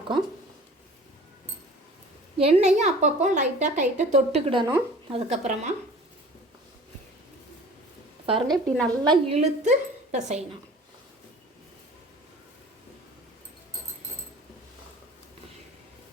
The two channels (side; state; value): both; normal; correlation 0.45